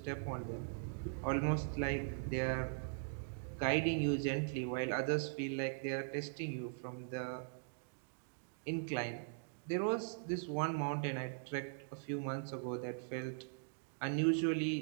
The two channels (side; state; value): left; silent; digital silence